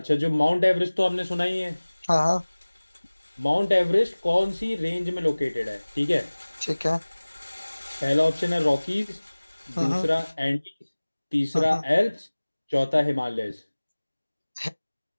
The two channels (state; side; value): inverted; both; correlation -1.00